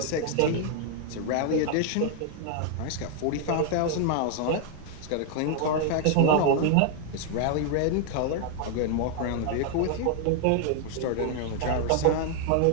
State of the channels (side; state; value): both; different; correlation 0.00